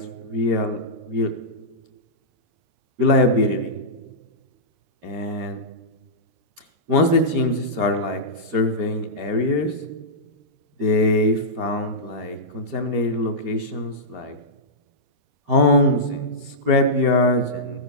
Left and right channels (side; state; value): left; late; 13 ms